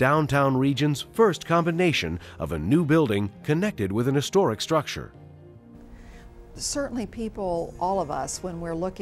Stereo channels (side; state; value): both; identical; correlation 1.00